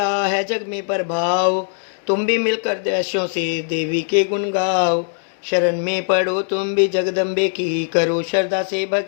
है जग में प्रभाव, तुम भी मिलकर दैश्यों से देवी के गुण गाओ। शरण में पढ़ो तुम भी जगदम्बे की, करो श्रद्धा से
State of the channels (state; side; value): silent; right; digital silence